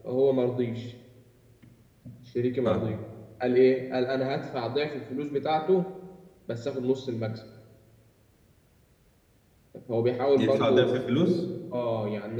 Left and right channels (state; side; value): identical; both; correlation 1.00